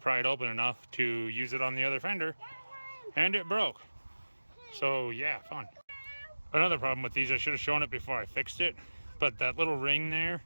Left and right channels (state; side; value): inverted; both; correlation -1.00